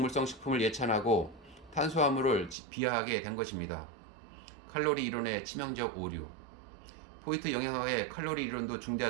식품을 예찬하고 탄수화물을 비하하게 된 것입니다. 칼로리 이론의 치명적 오류. 포이트 영양학의 칼로리 이론도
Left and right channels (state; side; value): drops out; left; at 2.6 s